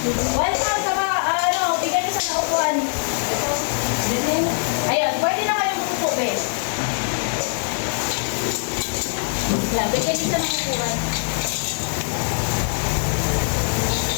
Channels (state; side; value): silent; right; 60 dB below the other